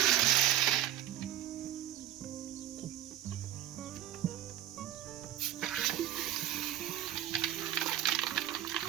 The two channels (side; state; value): left; quieter; 12.5 dB